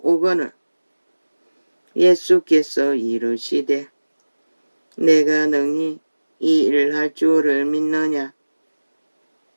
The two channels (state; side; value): inverted; both; correlation -1.00